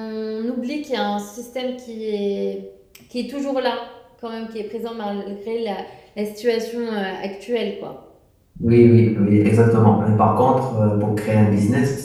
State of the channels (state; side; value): identical; both; correlation 1.00